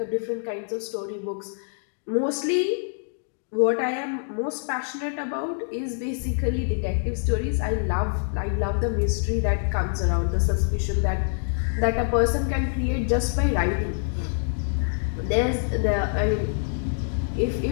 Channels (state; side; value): silent; right; digital silence